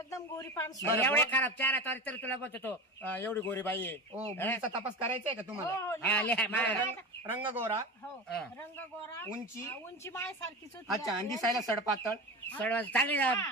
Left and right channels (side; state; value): both; normal; correlation 0.26